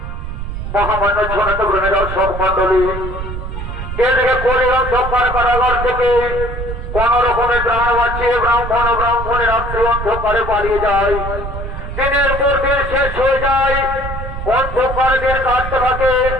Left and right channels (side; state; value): right; noise; rumble, 6 dB below the sound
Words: কোন রকমের প্রাণ বাঁচিয়ে ব্রাহ্মণ ও ব্রাহ্মণের রাত্রি অন্ধকারে পালিয়ে যায়। দিনের পর দিন শেষ হয়ে যায়, অন্ধকার দিন কাটতে থাকে।